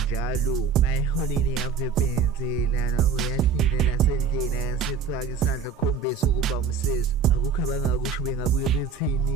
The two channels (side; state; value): left; quieter; 5.7 dB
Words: mayiholini yavebenzela uyahlile nasendlini ayasifaka isandla khombisa ukuba umsesi akukho abangakusho bengabuye